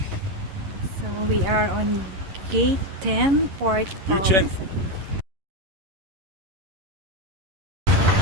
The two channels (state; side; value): late; left; 11 ms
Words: So we are on gate 10, port of